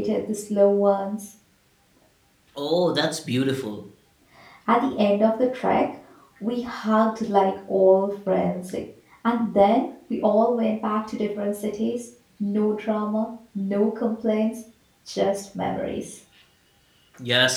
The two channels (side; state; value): both; identical; correlation 1.00